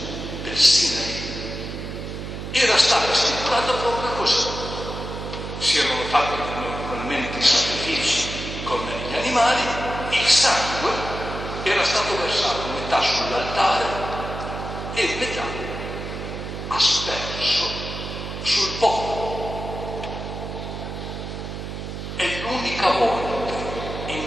del Sinai, era stata stipulata proprio così. Si erano fatti naturalmente i sacrifici con gli animali, il sangue era stato versato metà sull'altare e metà asperso sul popolo. È l'unica volta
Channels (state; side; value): noise; right; hum, 7 dB below the sound